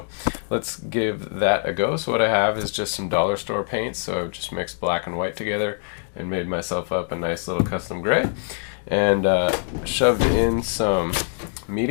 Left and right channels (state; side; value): silent; right; digital silence